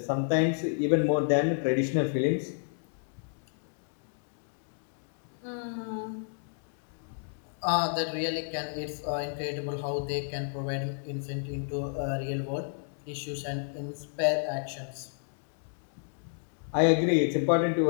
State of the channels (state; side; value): silent; right; digital silence